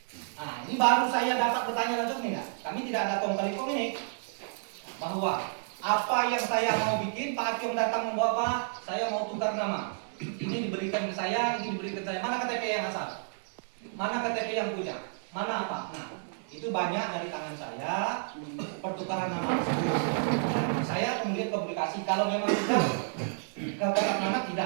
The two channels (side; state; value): left; silent; digital silence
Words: Nah, ini baru saya dapat bertanya langsung nih, kami tidak ada kong kali kong ini bahwa apa yang saya mau bikin, Pak Akyong datang membawa Pak, saya mau tukar nama. Ini diberikan ke saya, ini diberikan ke saya. Mana KTP yang asal? Mana KTP yang punya? Mana apa? Nah, itu banyak dari tangan saya pertukaran nama. Saya kemudian komunikasi kalau memang tidak ke kotak nama